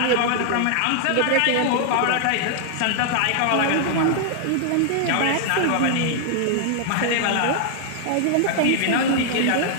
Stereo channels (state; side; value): different; both; correlation 0.00